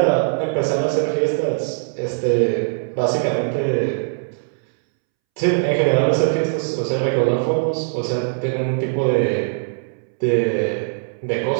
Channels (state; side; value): silent; left; 65 dB below the other